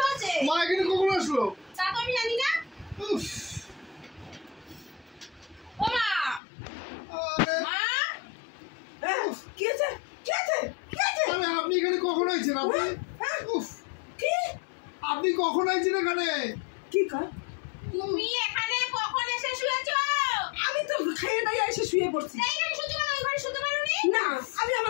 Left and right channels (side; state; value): right; drops out; at 6.4 s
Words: হচ্ছে? মা এখানে কখন আসলো? তা তো আমি জানি না। উফ, ও মা আরে মা হ্যাঁ কি আছে কি আছে কি আছে? আরে আপনি এখানে কখন আইছেন? আপনি হ্যাঁ উফ, কি আপনি কখন আইছেন এখানে? কি কর? তুমি এখানে কখন এসে শুয়েছো? আমি তো খেয়ে নাই এসে শুয়ে পড়ছি। এইখানে শুতে পারো, ওই ঘরে শুতে পারোনি? না আমি